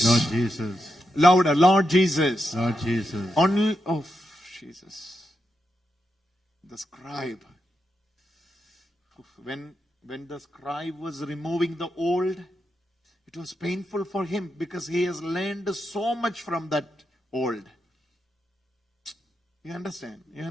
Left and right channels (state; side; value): normal; both; correlation 0.85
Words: Lord Jesus. Louder. Lord Jesus. Lord Jesus. Only, oh, Jesus. The scribe. When the scribe was removing the old, it was painful for him because he has learned so much from that old. You understand? You